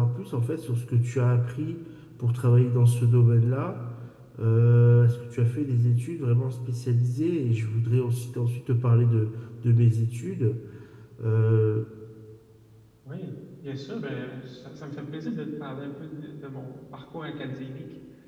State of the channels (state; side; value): identical; both; correlation 1.00